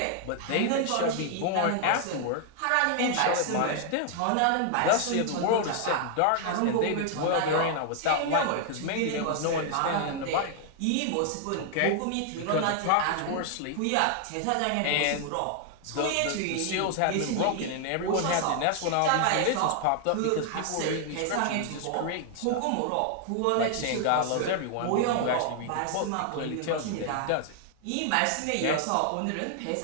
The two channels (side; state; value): both; different; correlation 0.00